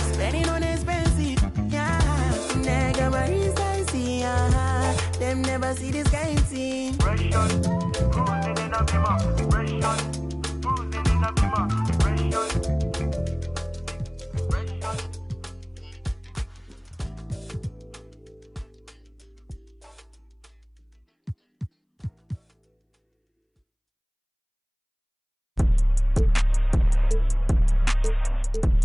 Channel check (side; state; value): both; identical; correlation 1.00